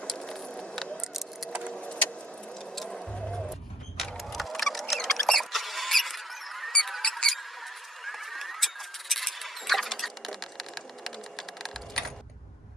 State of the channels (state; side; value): normal; both; correlation 0.56